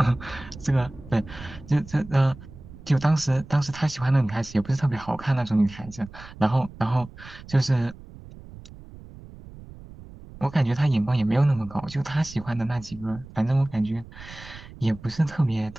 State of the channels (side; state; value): right; noise; rumble, 17 dB below the sound